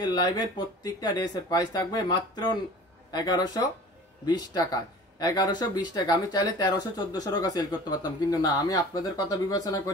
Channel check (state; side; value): normal; both; correlation 0.43